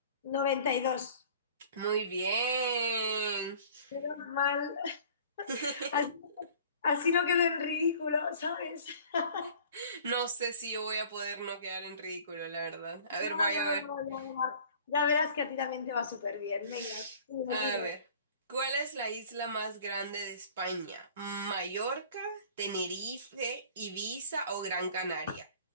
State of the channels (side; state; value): both; inverted; correlation -0.48